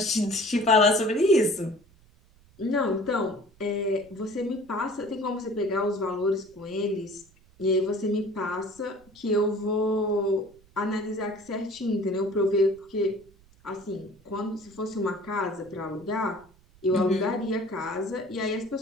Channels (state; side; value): noise; right; rumble, 28 dB below the sound